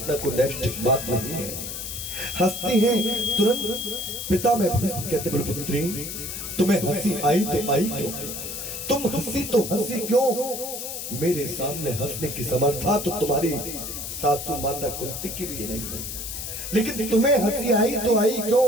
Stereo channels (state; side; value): noise; left; hiss, 6 dB below the sound